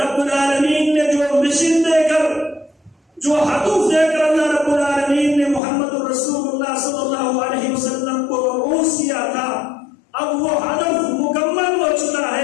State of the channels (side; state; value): right; drops out; at 5.6 s